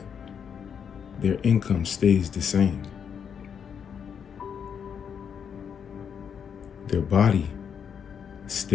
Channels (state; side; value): quieter; right; 7.4 dB